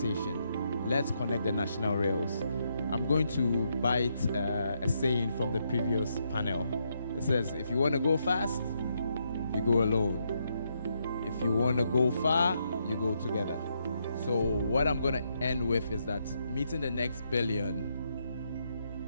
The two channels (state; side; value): inverted; both; correlation -0.78